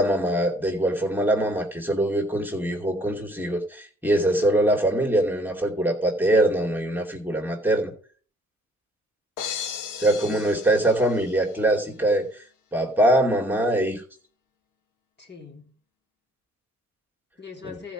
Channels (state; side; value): normal; both; correlation 0.59